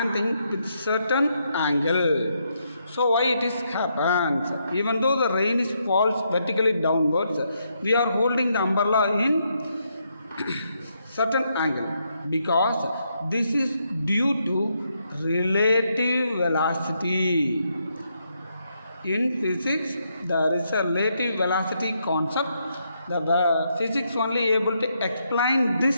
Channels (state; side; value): inverted; both; correlation -0.78